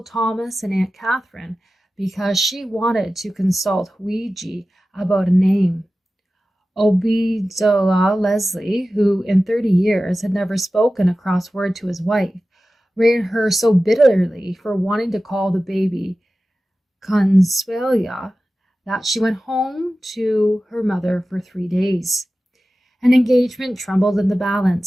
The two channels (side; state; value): both; normal; correlation 0.95